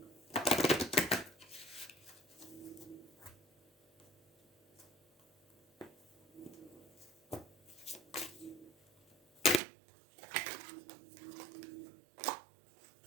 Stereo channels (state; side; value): drops out; left; at 9.6 s